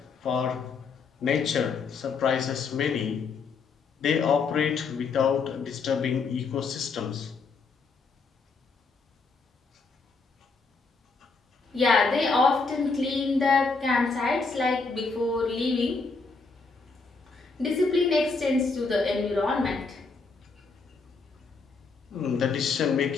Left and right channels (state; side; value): quieter; right; 4.4 dB